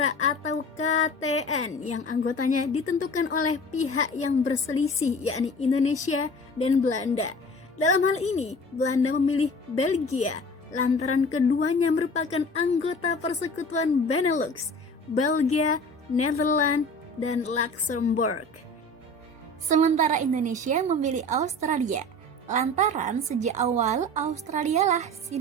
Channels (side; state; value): both; normal; correlation 0.41